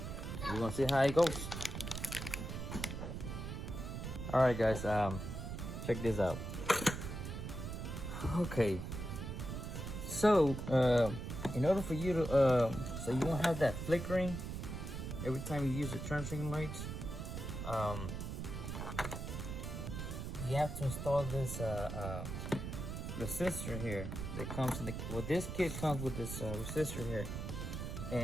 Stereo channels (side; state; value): right; noise; rumble, 5 dB below the sound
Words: gonna see how it goes. Alright guys, check this out. Okay, so in order for you to so you won't have that flickering every time you use the turn signal lights, you have to install this resistor here that comes in the, well, this kit comes with this resistor here,